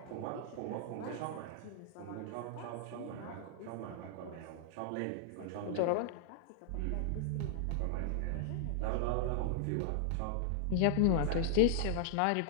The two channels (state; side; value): different; both; correlation -0.01